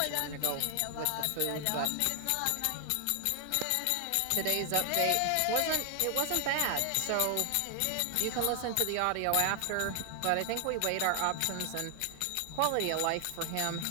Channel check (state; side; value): different; both; correlation 0.00